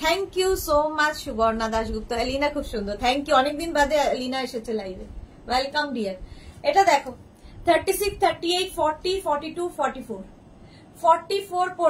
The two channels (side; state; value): both; identical; correlation 1.00